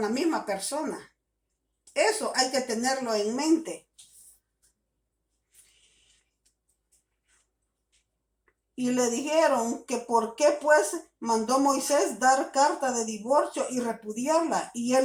la misma persona. Eso hay que tenerlo en mente. Y le dijeron que por qué pues mandó Moisés dar carta de divorcio y repudiarla. Y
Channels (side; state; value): both; identical; correlation 1.00